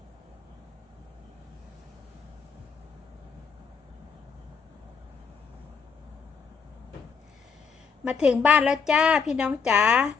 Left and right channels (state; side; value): quieter; right; 5.7 dB